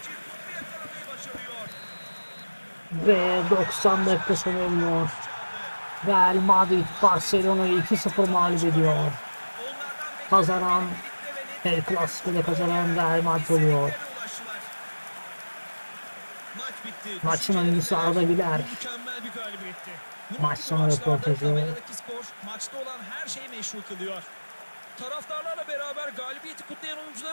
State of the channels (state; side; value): inverted; both; correlation -1.00